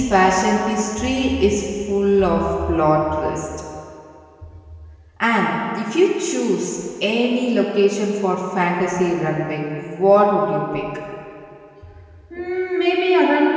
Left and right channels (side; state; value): both; identical; correlation 1.00